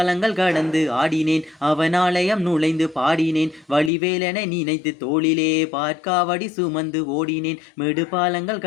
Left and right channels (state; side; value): drops out; right; at 3.9 s